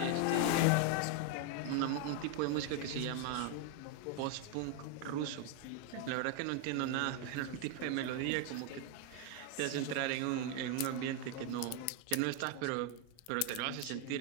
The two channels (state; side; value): different; both; correlation 0.01